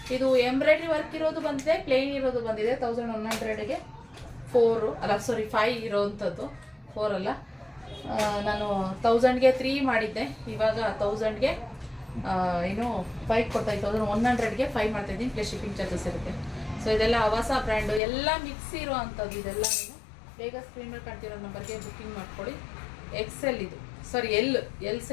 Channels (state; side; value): drops out; right; at 18.0 s